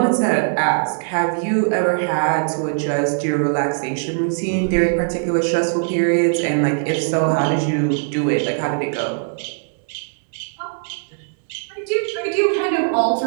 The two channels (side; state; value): left; silent; digital silence